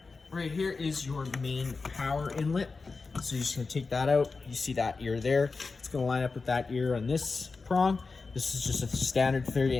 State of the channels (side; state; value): right; quieter; 4.2 dB